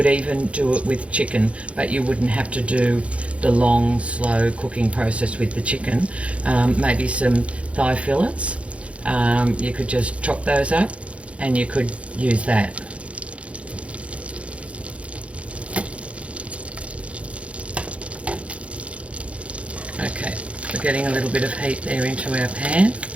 even do it with chicken, but you wouldn't have to do the long, slow cooking process with the chicken. Maybe some thigh fillets. You could just chop those up and you could use that. Okay, we're getting a little bit of heat there into our pan.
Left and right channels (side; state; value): left; late; 0.062 ms